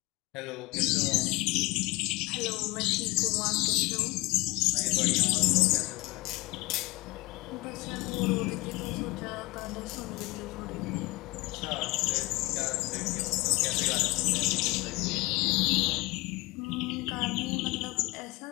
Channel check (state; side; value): quieter; right; 22.7 dB